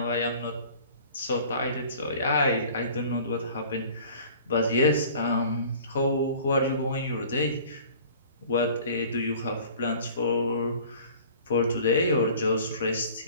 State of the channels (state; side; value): inverted; both; correlation -0.47